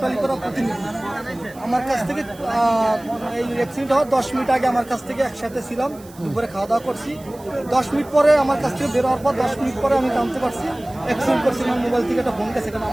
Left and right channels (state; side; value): noise; right; hiss, 23 dB below the sound